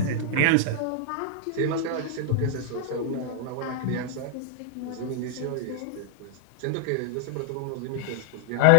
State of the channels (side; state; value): both; different; correlation 0.00